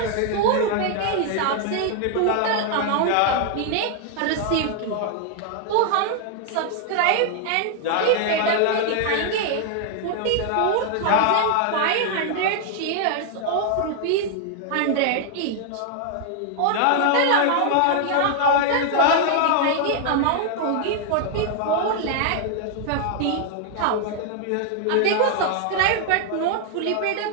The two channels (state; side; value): different; both; correlation 0.00